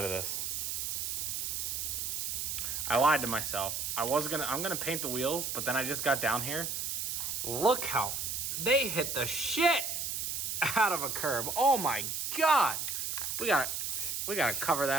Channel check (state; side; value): noise; right; hiss, 2 dB below the sound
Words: of this. I lied to myself. I'm gonna paint the wheels, but then I just got down here. Look how they hit the shit out of a curb. Oh my God. We gotta cover